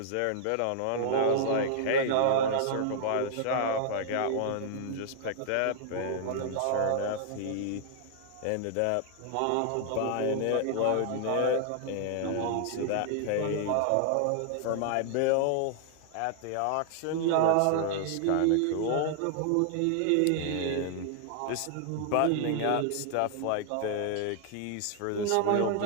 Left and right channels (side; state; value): both; different; correlation -0.01